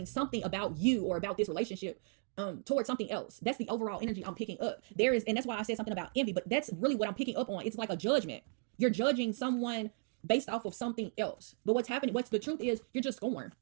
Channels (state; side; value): silent; left; 54 dB below the other